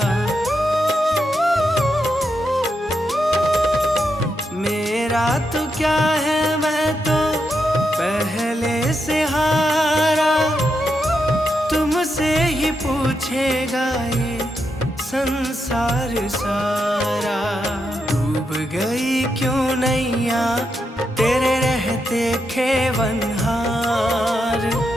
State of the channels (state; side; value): normal; both; correlation 0.83